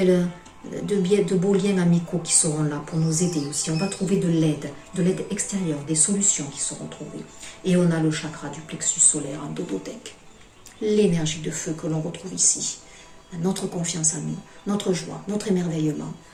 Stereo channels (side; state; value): both; identical; correlation 1.00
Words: beaux liens amicaux qui seront là pour nous aider aussi. On va trouver de l'aide extérieure, des solutions qui seront trouvées. Et on a le chakra du plexus solaire en dododec. L'énergie de feu que l'on retrouve ici. Notre confiance en nous, notre joie, notre émerveillement,